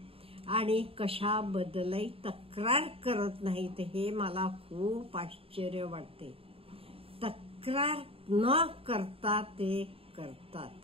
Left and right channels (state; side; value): late; left; 0.27 ms